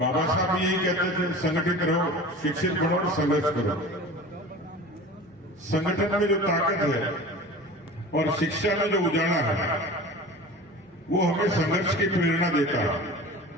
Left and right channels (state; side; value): normal; both; correlation 0.37